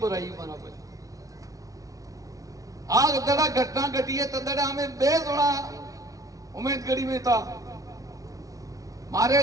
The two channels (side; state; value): left; late; 0.17 ms